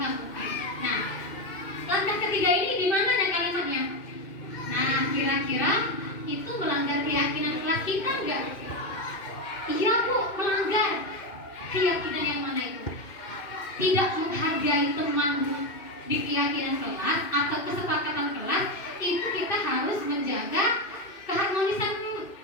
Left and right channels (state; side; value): late; right; 2.6 ms